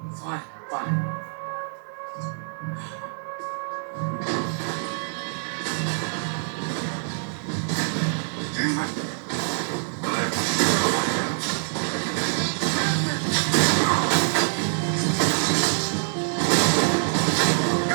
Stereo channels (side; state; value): left; silent; 62 dB below the other